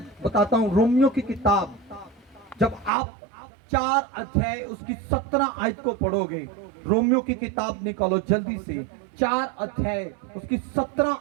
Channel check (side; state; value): left; drops out; at 2.9 s